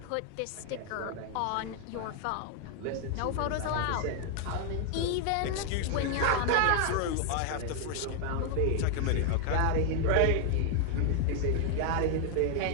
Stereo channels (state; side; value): different; both; correlation 0.00